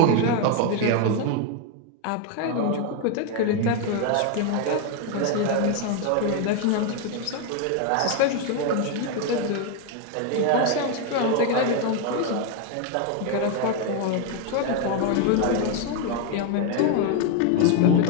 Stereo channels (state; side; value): different; both; correlation 0.01